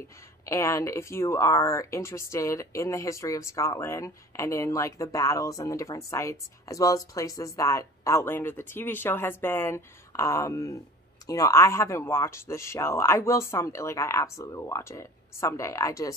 And if you are interested in the history of Scotland and in like the battles and the different sites, as well as places that Outlander, the TV show, has been, you know, I haven't watched the show. I will someday, like I absolutely will watch it someday. I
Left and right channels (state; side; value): normal; both; correlation 0.41